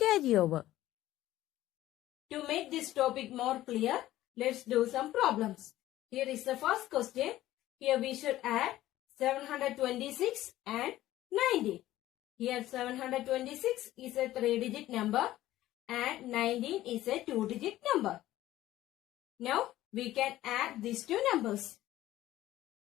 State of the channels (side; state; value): right; quieter; 14.8 dB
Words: To make this topic more clear, let's do some problems. Here is the first question. Here we should add 726 and 90. Here 726 is a 3-digit number and 19 is a 2-digit number. Now we can add these two numbers.